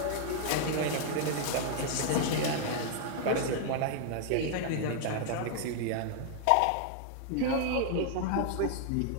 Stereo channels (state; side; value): different; both; correlation 0.00